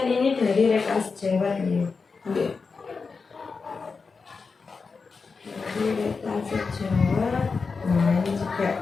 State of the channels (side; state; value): right; quieter; 4.8 dB